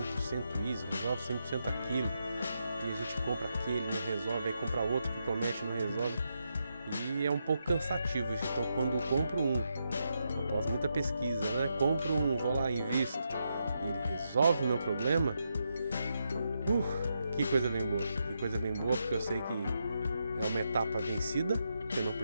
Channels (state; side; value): inverted; both; correlation -0.83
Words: isso, resolve 100% aquilo. E a gente compra aquele, não resolve, aí compra outro que promete, não resolve. E é um pouco cansativo isso. Então quando eu compro após muita pesquisa, né? Compro vou lá, invisto, e ele resolve o meu problema. Que coisa bem boa. Que coisa bem boa, porque eu sei que é uma etapa vencida, que eu não